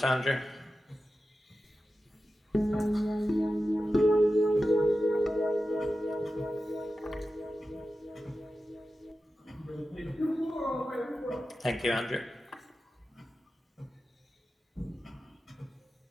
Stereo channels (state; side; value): normal; both; correlation 0.92